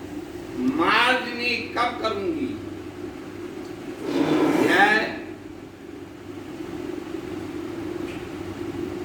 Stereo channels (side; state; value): both; identical; correlation 1.00